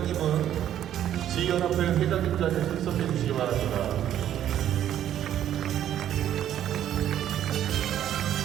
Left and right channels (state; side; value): quieter; left; 11.0 dB